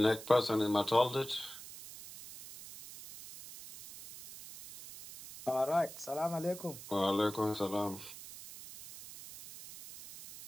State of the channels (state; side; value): noise; right; hiss, 14 dB below the sound